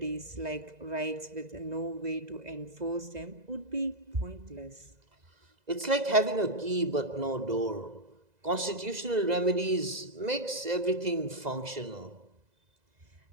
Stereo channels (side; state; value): left; late; 2.0 ms